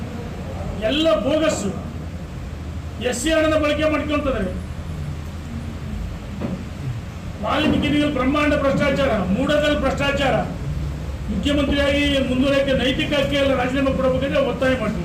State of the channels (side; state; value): both; identical; correlation 1.00